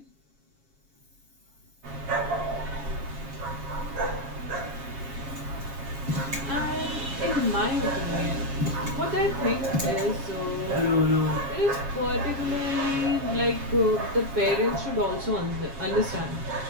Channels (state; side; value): late; left; 7.3 ms